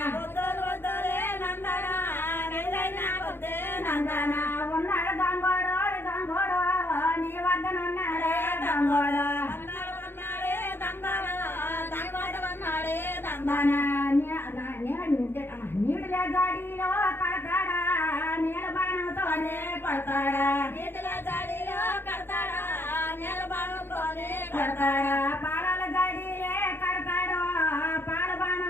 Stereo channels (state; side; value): late; right; 0.10 ms